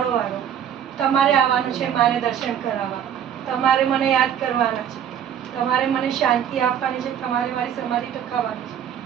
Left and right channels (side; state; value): left; quieter; 9.3 dB